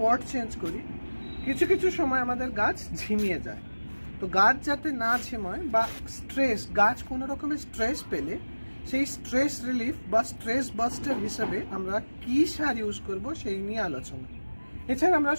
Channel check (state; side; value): inverted; both; correlation -1.00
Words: পট চেঞ্জ করি, কিছু কিছু সময় আমাদের গাছ ঝিমিয়ে যায়। তো গাছ যাতে না ঝিমায় বা স্ট্রেস, গাছ কোনো রকমের স্ট্রেস পেলে সেই স্ট্রেস রিলিফ বা স্ট্রেস বাস্টার হিসেবে আমরা কি সার ইউজ করব সেই নিয়ে আলোচনা। এছাড়া আমরা